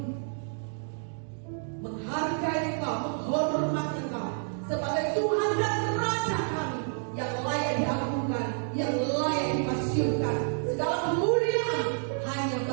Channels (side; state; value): left; silent; digital silence